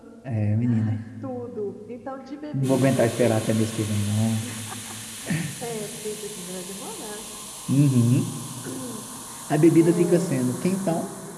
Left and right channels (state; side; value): identical; both; correlation 1.00